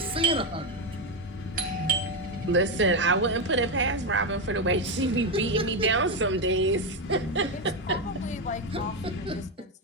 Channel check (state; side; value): normal; both; correlation 0.08